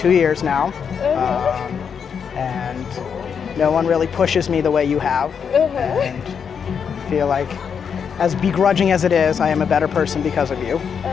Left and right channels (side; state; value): right; quieter; 6.9 dB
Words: years now. And no one really pushes me the way you have. And I feel like, as begrudging as it is, I am a better person because of you.